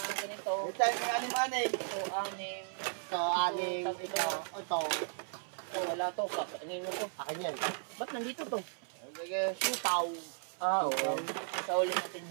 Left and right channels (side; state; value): left; silent; 54 dB below the other